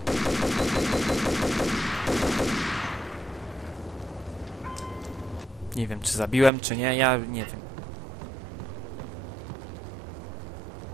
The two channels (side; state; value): left; drops out; at 6.5 s